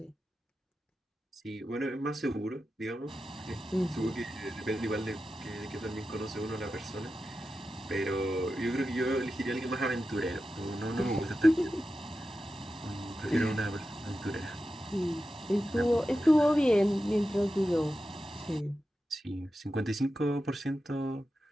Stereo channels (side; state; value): both; normal; correlation 0.92